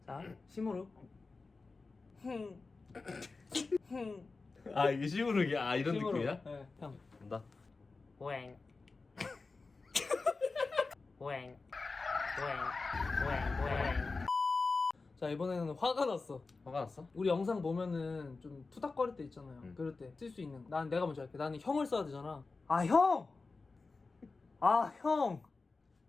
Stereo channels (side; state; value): right; quieter; 3.9 dB